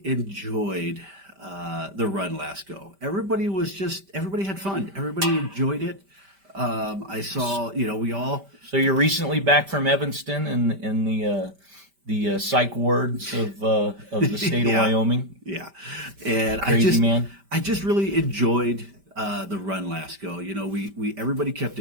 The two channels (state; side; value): late; left; 5.1 ms